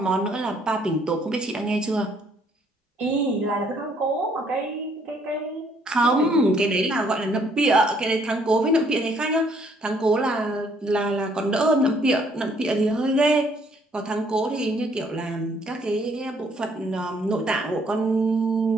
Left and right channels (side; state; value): both; normal; correlation 0.65